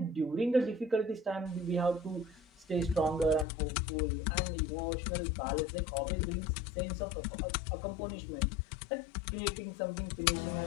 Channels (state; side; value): drops out; right; at 3.5 s